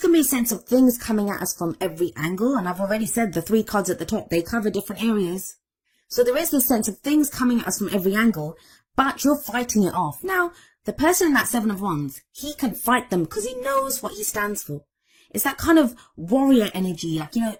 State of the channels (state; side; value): identical; both; correlation 1.00